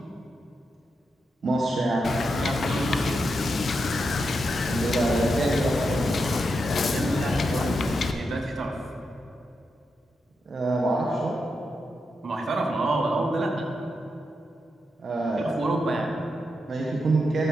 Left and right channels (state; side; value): normal; both; correlation 0.85